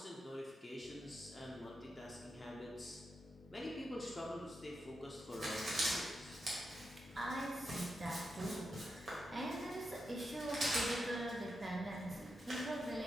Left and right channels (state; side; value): normal; both; correlation 0.87